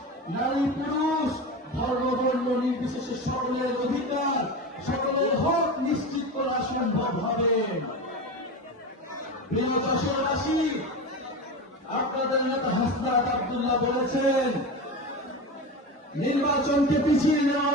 নারী পুরুষ, ধর্ম বর্ণ নির্বিশেষে সকলের অধিকার, সকলের হক নিশ্চিত করা সম্ভব হবে। প্রিয় যশোরবাসী, আপনাদের নেতা হাসনাত আব্দুল্লাহ বলেছেন নির্বাচনকে পিছিয়ে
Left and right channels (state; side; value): normal; both; correlation 0.24